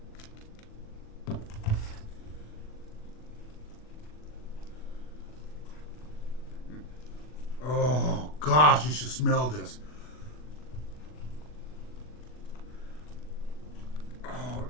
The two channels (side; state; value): right; late; 40 ms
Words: Oh gosh, you should smell this. Oh,